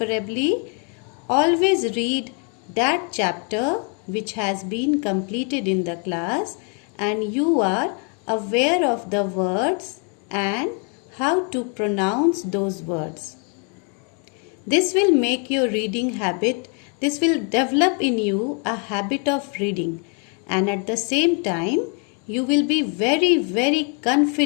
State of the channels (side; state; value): right; quieter; 38.5 dB